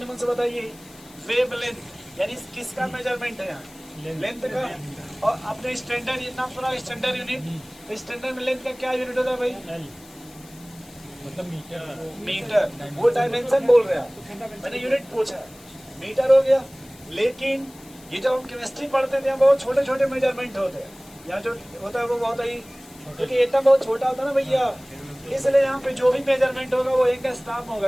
मन से बताइए, वेवलेंथ यानी किसका मेजरमेंट है यहाँ? लेंथ का। और अपने स्टैंडर्ड नाम सुना, स्टैंडर्ड यूनिट। स्टैंडर्ड में लेंथ का क्या यूनिट होता है भाई? मतलब मीटर। वो डायमेंशन बोल रहे हैं, मैंने यूनिट पूछा, मीटर हो गया। लेकिन ये जब हम केमिस्ट्री पढ़ते थे, बहुत छोटे छोटे मेजरमेंट होते हैं। यहाँ जो होता है वो बहुत ही, क्योंकि एटम बहुत छोटा होता है ना भैया, इसलिए यहाँ पे जो भी मेजरमेंट होगा वो एंगस्ट्रॉम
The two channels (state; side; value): noise; left; hiss, 23 dB below the sound